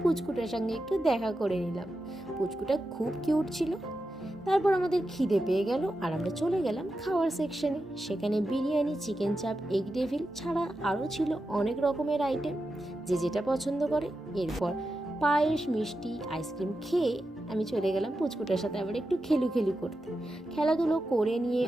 পুচকুটার সঙ্গে একটু দেখা করে নিলাম। পুচকুটা খুব কিউট ছিল। তারপর আমাদের খিদে পেয়ে গেল আর আমরা চলে গেলাম খাওয়ার সেকশনে। সেখানে বিরিয়ানি, চিকেন চাপ, এগ ডেভিল ছাড়া আরও ছিল অনেক রকমের আইটেম, যে যেটা পছন্দ করে। এরপর পায়েস, মিষ্টি, আইসক্রিম খেয়ে আমি চলে গেলাম পুচকুটার সাথে আবার একটু খেলু করতে। খেলাধুলো করে নিয়ে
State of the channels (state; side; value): normal; both; correlation 0.90